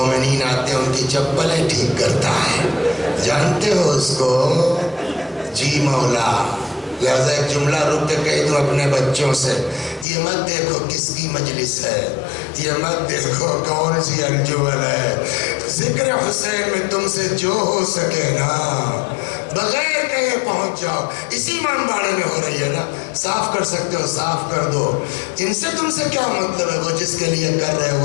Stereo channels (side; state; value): right; drops out; at 10.1 s